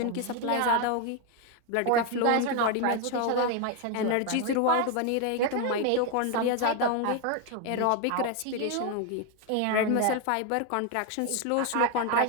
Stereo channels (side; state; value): both; different; correlation 0.01